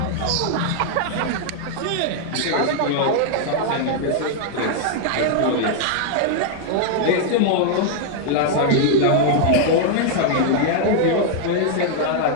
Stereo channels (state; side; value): different; both; correlation 0.00